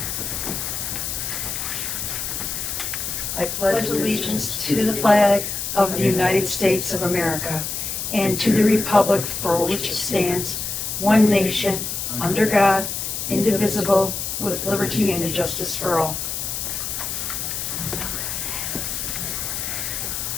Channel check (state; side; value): noise; left; hiss, 4 dB below the sound